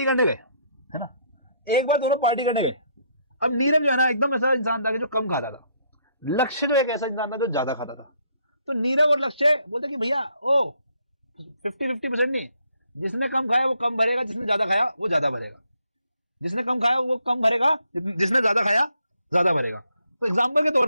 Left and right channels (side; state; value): both; inverted; correlation -0.71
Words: करने गए है ना, अब नीरव जो है ना एकदम ऐसा इंसान था कि जो कम खाता था, लक्ष्य जो एक ऐसा इंसान था जो ज्यादा खाता था। तो नीरव और लक्ष्य बोलते कि भैया ओ 50-50% नहीं, जिसने कम खाया वो कम भरेगा, जिसने ज्यादा खाया वो ज्यादा भरेगा, जिसने कम खाया वो कम भरेगा, जिसने ज्यादा खाया ज्यादा भरेगा। तो एग्जाम्पल के तौर